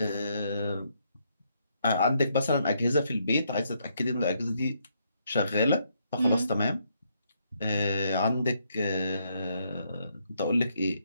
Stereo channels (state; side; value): inverted; both; correlation -0.75